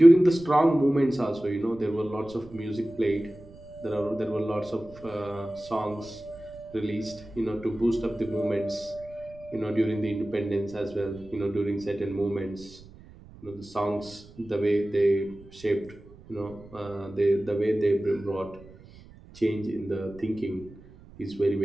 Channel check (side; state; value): right; noise; rumble, 21 dB below the sound